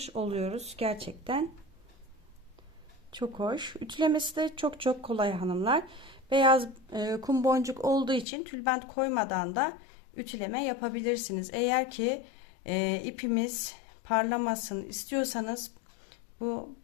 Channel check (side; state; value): right; drops out; at 8.2 s